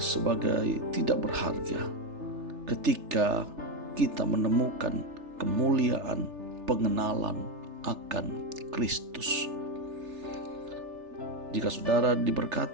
tidak berharga ketika kita menemukan kemuliaan pengenalan akan Kristus. Jika saudara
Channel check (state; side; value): late; left; 3.4 ms